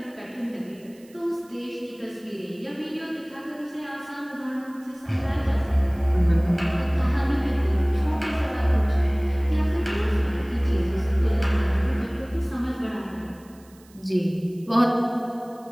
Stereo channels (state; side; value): noise; right; hiss, 28 dB below the sound